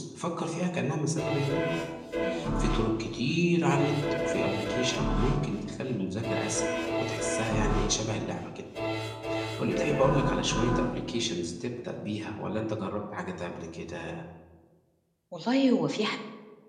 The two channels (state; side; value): identical; both; correlation 1.00